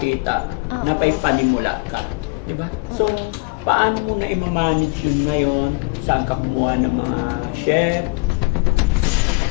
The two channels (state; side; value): quieter; right; 27.2 dB